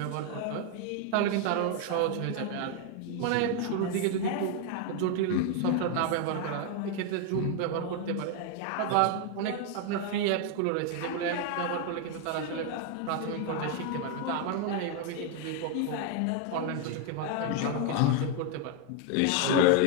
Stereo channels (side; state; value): both; different; correlation 0.01